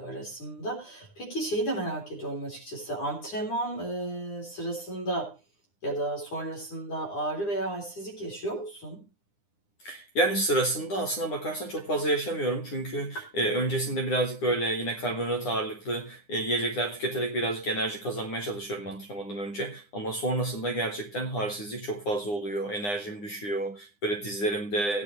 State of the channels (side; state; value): right; late; 9.8 ms